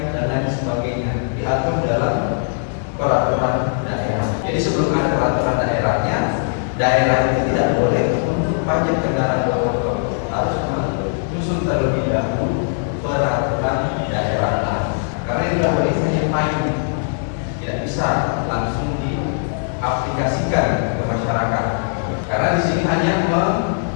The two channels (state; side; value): silent; right; 57 dB below the other